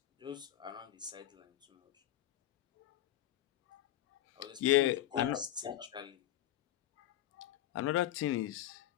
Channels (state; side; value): quieter; right; 13.5 dB